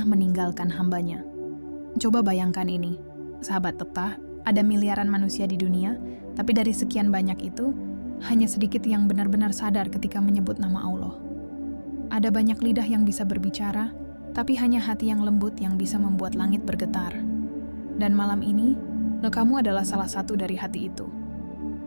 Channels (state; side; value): inverted; both; correlation -1.00